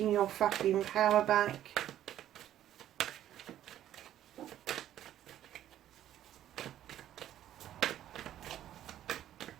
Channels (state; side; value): quieter; left; 11.9 dB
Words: your fucking power back.